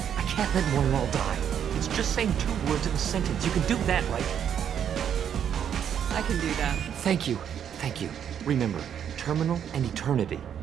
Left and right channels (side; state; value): left; quieter; 8.8 dB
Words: I can't let Moiral die. It's just saying 2 words in a sentence. You can do that, right? I can do that. Thank you. Thank you. Remember, terminal and eternity.